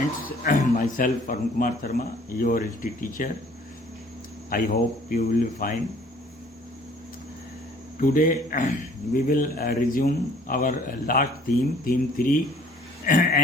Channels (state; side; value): normal; both; correlation 0.55